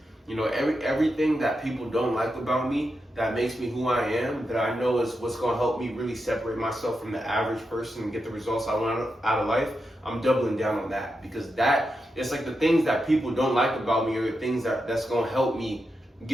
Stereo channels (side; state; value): both; normal; correlation 0.87